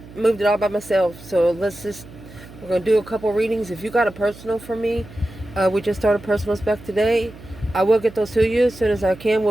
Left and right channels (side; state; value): right; noise; hum, 18 dB below the sound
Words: Moved it all by myself. So we're gonna do a couple readings. If you got a personal for me, we just started personal spec today. I will get those to you as soon as I can.